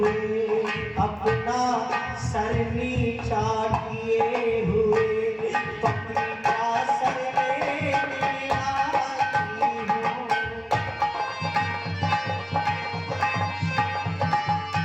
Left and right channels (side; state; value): both; identical; correlation 1.00